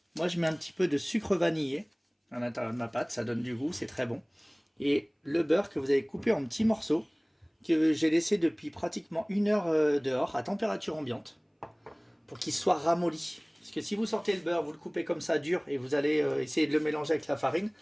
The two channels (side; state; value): both; identical; correlation 1.00